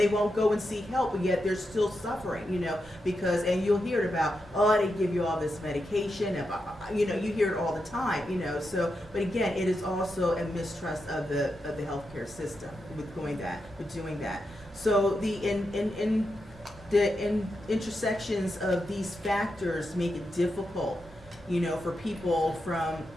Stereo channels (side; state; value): both; normal; correlation 0.86